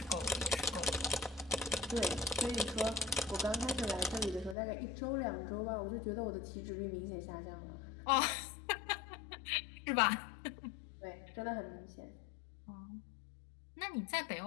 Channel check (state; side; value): drops out; right; at 4.5 s